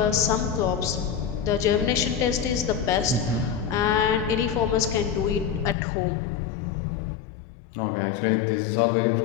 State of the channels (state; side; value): drops out; right; at 5.8 s